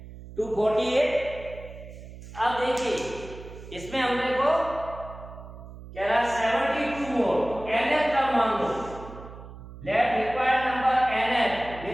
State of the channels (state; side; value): noise; right; hum, 15 dB below the sound